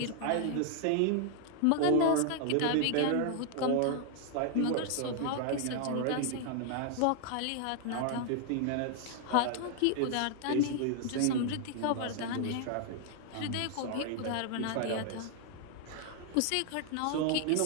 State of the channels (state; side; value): different; both; correlation 0.00